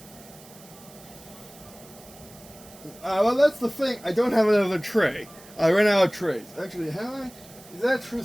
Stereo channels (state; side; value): noise; right; hiss, 21 dB below the sound